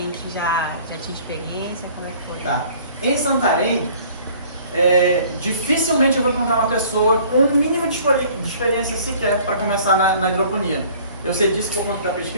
que já tinha experiência? Como é que foi? Tá. Em Santarém, dificilmente eu vou encontrar uma pessoa com um mínimo de experiência sequer para começar na hidroponia. Eu sei disso por conta da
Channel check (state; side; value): inverted; both; correlation -0.53